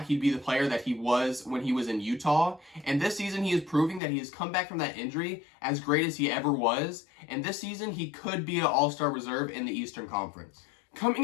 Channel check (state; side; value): drops out; right; at 4.0 s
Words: he'd be the player that he was when he was in Utah, and this season he is proving that he has come back from that injury as great as he ever was, and this season he could be an all-star reserve in the Eastern Conference.